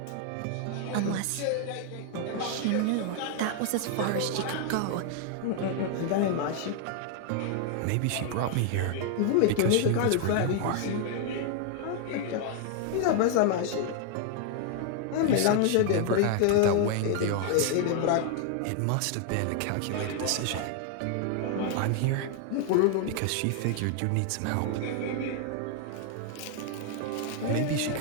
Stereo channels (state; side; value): different; both; correlation 0.00